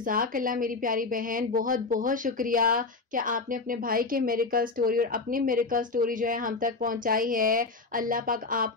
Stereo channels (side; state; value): right; quieter; 3.9 dB